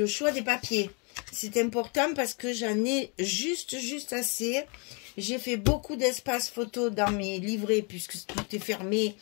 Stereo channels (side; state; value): right; quieter; 34.4 dB